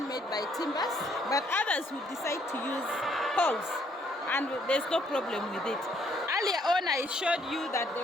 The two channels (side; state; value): both; normal; correlation 0.68